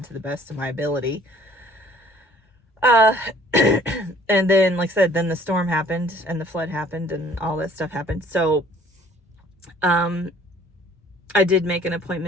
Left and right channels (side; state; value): both; normal; correlation 0.55